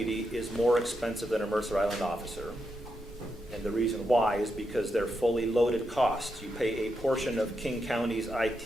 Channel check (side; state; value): both; normal; correlation 0.84